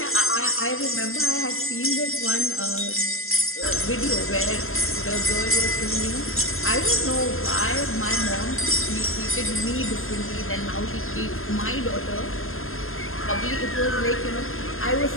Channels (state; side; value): late; right; 0.61 ms